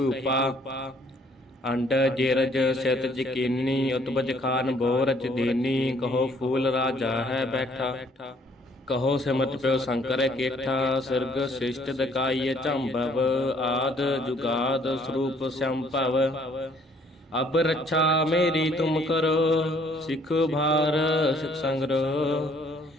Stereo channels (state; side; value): normal; both; correlation 0.62